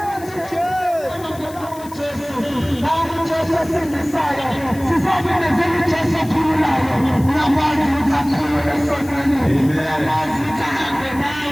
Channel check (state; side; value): noise; left; hiss, 19 dB below the sound